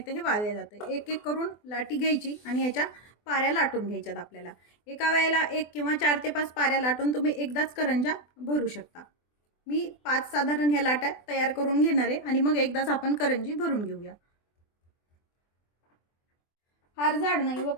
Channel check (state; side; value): late; right; 24 ms